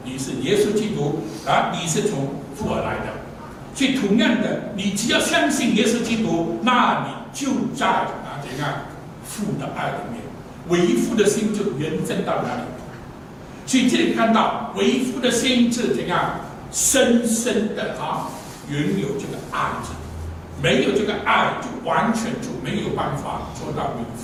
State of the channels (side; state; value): both; identical; correlation 1.00